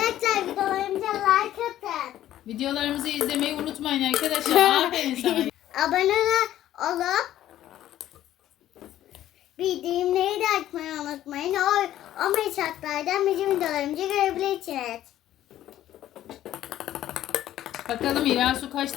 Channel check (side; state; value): right; quieter; 12.8 dB